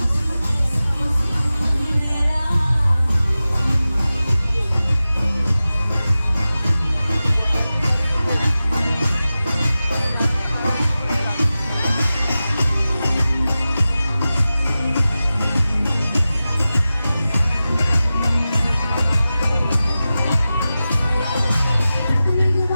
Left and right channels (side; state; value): both; inverted; correlation -0.95